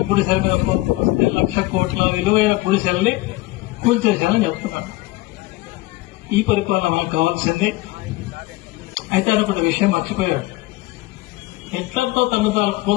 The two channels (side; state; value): right; quieter; 19.9 dB